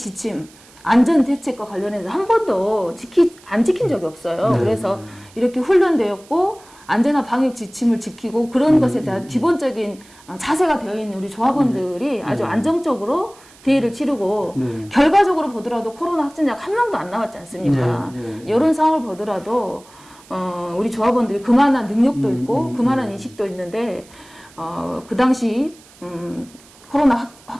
안전 대책과 관련해서 한 번도 안 지킨 적이 없어요. 네. 그래서 이렇게 훈련되었고 안전한 방역 지침을 지키고 그런 것에 대한 기본적인 자세가 되어 있는 우리 조합원들이 아주 안정적으로 대회를 치르고 결과적으로 보더라도 코로나 확진자가 한 명도 안 나왔지 않습니까? 이런 상황을 보더라도 우리 조합원들이 그만한 능력도 있고 그만한 인식도 있는데 그 당시 코로나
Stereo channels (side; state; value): right; noise; hiss, 25 dB below the sound